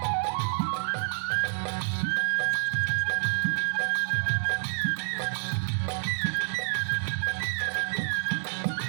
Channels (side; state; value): left; silent; digital silence